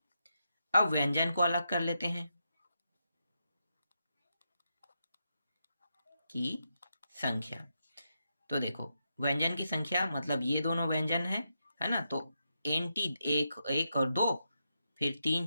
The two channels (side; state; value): both; inverted; correlation -0.84